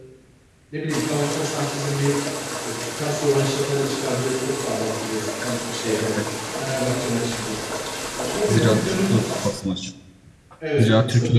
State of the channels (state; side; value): identical; both; correlation 1.00